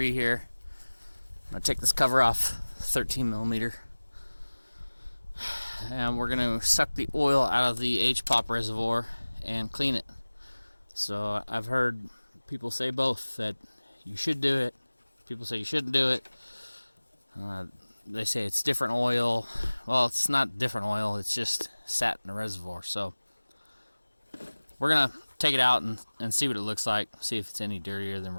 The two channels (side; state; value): both; inverted; correlation -1.00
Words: here. I'm going to take this cover off, 13 millimeter. And we're going to suck the oil out of the HPOP reservoir and clean it. So I've heard people say both, that you should do it. People say you shouldn't do it. They say it's different oil. Well, it's not different oil, it's just sat in the reservoir. So we're going to take it out and see what it looks like, see if it's any dirtier than